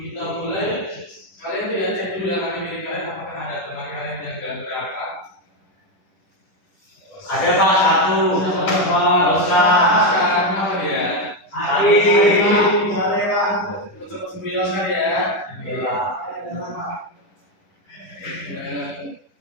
kita mulai, kalian tidak cek dulu dalam diri kalian apakah ada teman kalian yang gak berangkat? Ada Pak satu. Sekarang apa dia? Untuk sembilan sekali ya.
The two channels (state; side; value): late; right; 10 ms